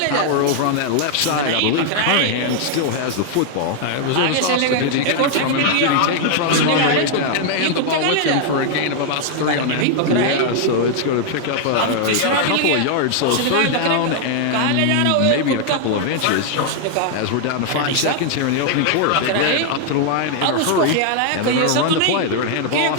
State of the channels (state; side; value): different; both; correlation 0.00